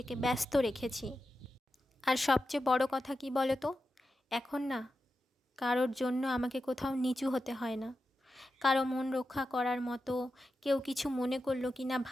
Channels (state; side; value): normal; both; correlation 0.90